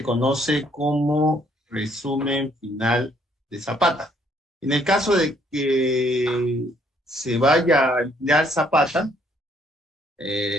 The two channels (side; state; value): both; normal; correlation 0.66